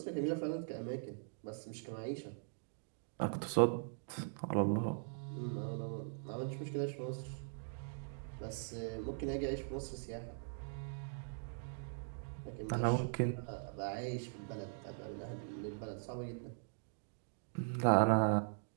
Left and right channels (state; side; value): silent; left; digital silence